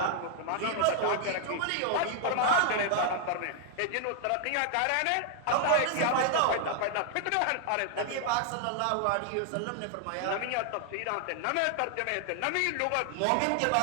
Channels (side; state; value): both; different; correlation 0.00